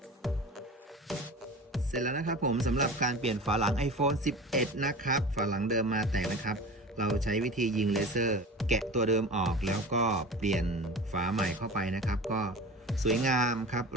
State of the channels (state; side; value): normal; both; correlation 0.34